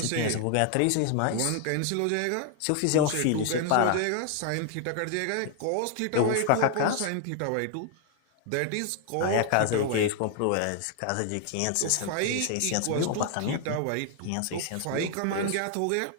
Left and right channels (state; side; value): different; both; correlation 0.00